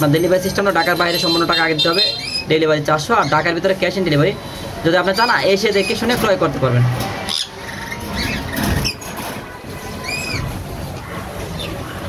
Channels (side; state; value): both; identical; correlation 1.00